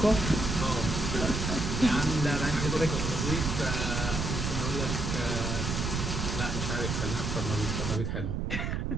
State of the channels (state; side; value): noise; right; rumble, 2 dB below the sound